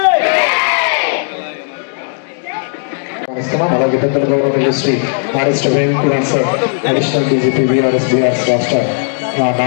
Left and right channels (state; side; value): silent; right; 58 dB below the other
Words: అలాగే పెద్దల గౌరవ Shri RS Kumar sir additional DGP BRS రాష్ట్ర